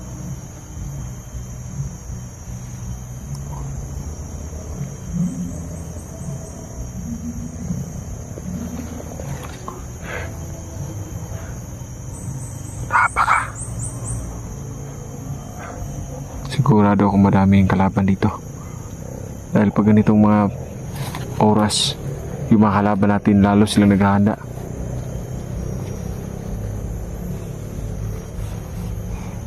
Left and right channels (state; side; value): identical; both; correlation 1.00